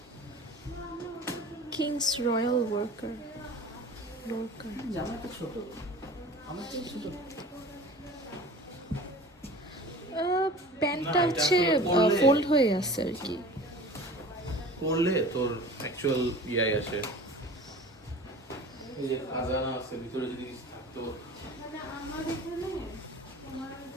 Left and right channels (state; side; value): normal; both; correlation 0.40